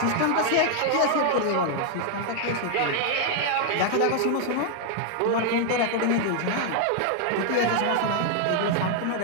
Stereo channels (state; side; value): different; both; correlation 0.00